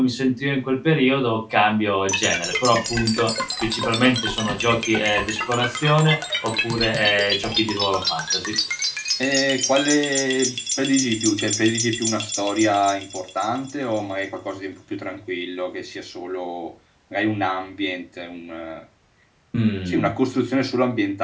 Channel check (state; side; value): identical; both; correlation 1.00